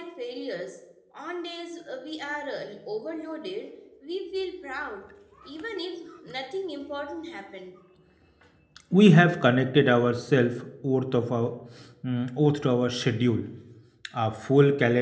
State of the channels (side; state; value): both; identical; correlation 1.00